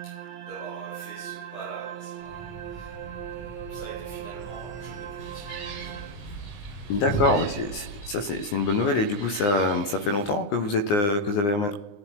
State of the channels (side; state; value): right; late; 19 ms